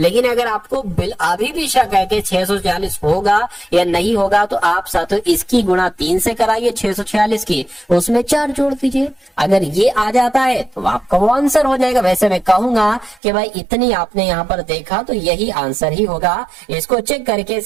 अगर आपको अभी भी शक है कि 646 होगा या नहीं होगा तो आप साथियों इसकी गुणा 3 से कराइए 646 की, उसमें 4 जोड़ दीजिए। अगर ये आ जाता है तो आपका वो आंसर हो जाएगा। वैसे मैं कहूंगा कि भाई इतनी आपने यहाँ पर देखा तो यही आंसर ही होगा। इसको चेक करके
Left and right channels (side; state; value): left; drops out; at 13.2 s